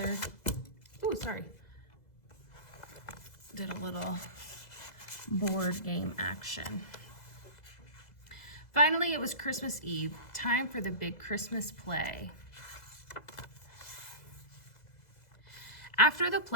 did a little board game action. Finally, it was Christmas Eve. Time for the big Christmas play. After the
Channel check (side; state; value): right; late; 2.0 ms